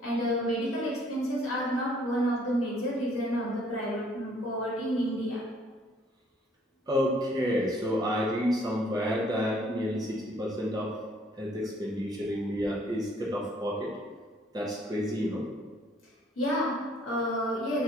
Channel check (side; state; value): both; normal; correlation 0.61